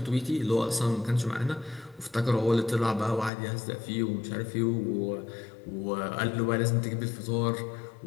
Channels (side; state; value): right; drops out; at 3.3 s